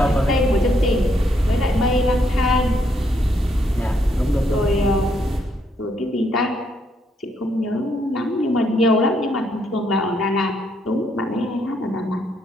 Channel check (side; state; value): both; normal; correlation 0.74